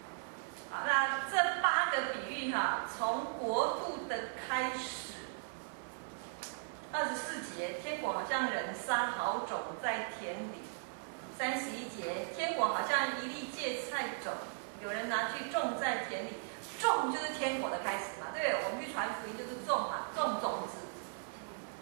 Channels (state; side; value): silent; left; 53 dB below the other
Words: 好，那这8个比喻哈，从国度的开始。24节，天国好像人撒好种在田里。31节，天国好像一粒芥菜种，有人拿去种在田里，种就是天国的开始嘛，对不对？我们去传福音就是种嘛，种种子。